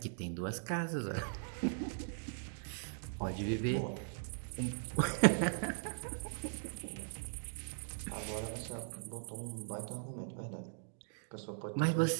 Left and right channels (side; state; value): left; silent; digital silence